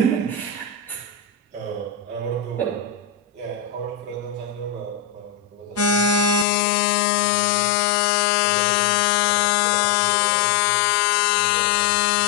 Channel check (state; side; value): drops out; right; at 6.5 s